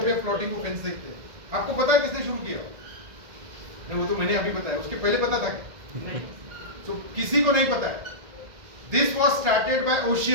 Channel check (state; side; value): late; left; 1.9 ms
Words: पे प्लॉटिंग को फेंस देखते हैं, आपको पता है किसने शुरू किया? नहीं, वो तो मैंने अभी बताया, उसके पहले पता था क्या? तो किसी को नहीं पता है। This was started by